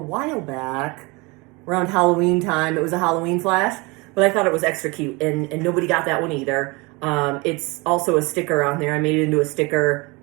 back, around Halloween time. It was a Halloween flash, but I thought it was extra cute, and nobody got that one either. It's also a sticker on there. I made it into a sticker.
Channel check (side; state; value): left; quieter; 26.0 dB